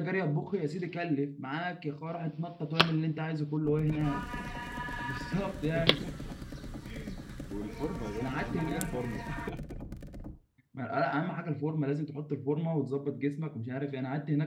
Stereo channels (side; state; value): both; identical; correlation 1.00